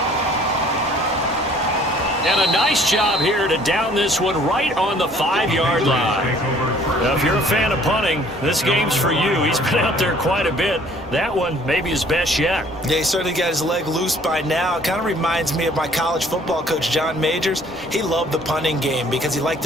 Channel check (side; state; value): both; normal; correlation 0.56